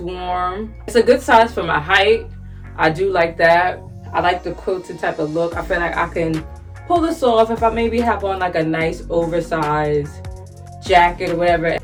warm. It's a good size for my height. I do like that. I like the quilted type of look. I feel like I can pull this off if I maybe have on like a nice oversized jacket or whatever.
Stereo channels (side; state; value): both; identical; correlation 1.00